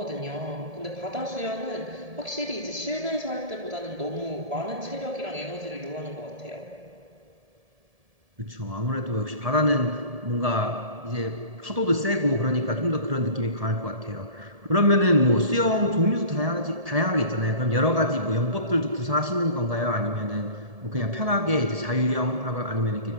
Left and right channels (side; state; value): left; late; 1.7 ms